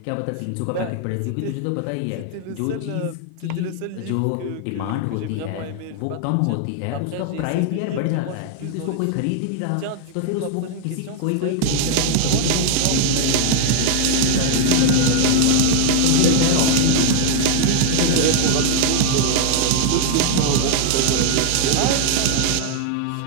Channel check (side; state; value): both; different; correlation 0.00